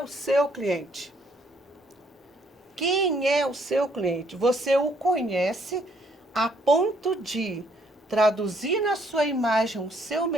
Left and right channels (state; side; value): normal; both; correlation 0.67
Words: seu cliente? Quem é o seu cliente? Você o conhece a ponto de traduzir na sua imagem o seu